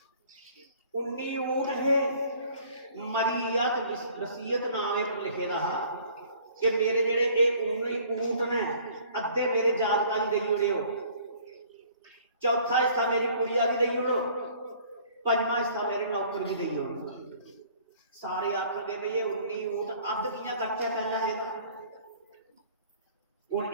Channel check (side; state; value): both; inverted; correlation -0.54